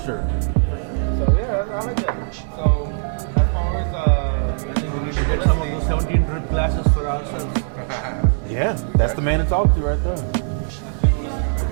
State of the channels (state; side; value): silent; left; digital silence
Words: sure. So yeah, I like that. So as far as people listening, 17 drip glasses for ourselves. Yeah, that's the man to talk to right there. as people listening right